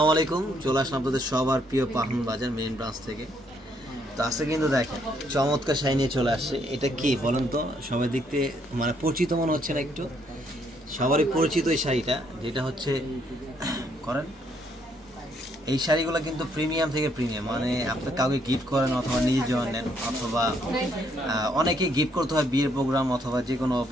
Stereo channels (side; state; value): both; normal; correlation 0.71